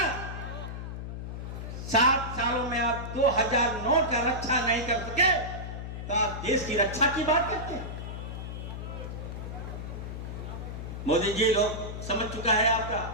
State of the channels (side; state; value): left; noise; hum, 7 dB below the sound